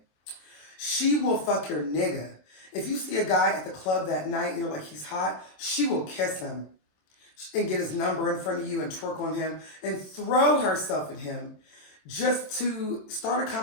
She will fuck your nigga. If you see a guy at the club that night and you're like, he's hot, she will kiss him and get his number in front of you and twerk on him and throw herself at him just to start a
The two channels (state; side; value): late; right; 27 ms